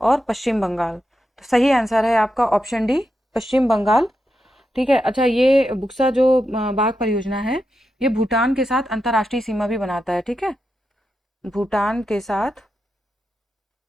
पश्चिम बंगाल। तो सही आंसर है आपका ऑप्शन डी पश्चिम बंगाल। ठीक है, अच्छा ये बुक्सा जो बाग परियोजना है, ये भूटान के साथ अंतर्राष्ट्रीय सीमा भी बनाता है। ठीक है, भूटान के साथ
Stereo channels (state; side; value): normal; both; correlation 0.87